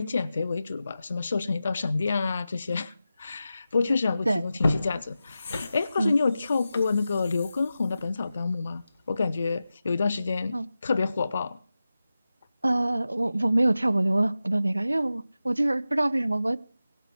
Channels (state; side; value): inverted; both; correlation -0.93